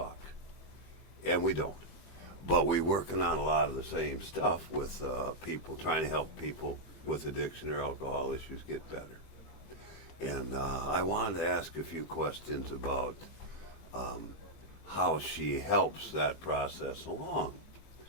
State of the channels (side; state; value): right; late; 20 ms